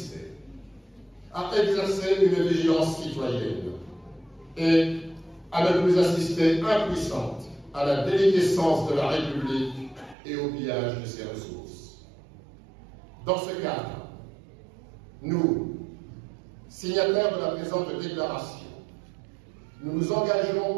à exercer une vigilance citoyenne et à ne plus assister impuissante à la déliquescence de la République et au pillage de ses ressources. Dans ce cadre, nous, signataires de la présente déclaration, nous nous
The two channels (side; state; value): left; drops out; at 10.2 s